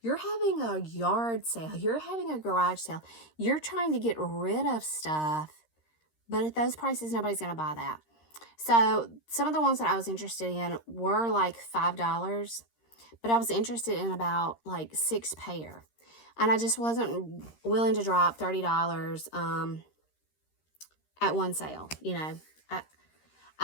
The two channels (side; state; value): right; late; 13 ms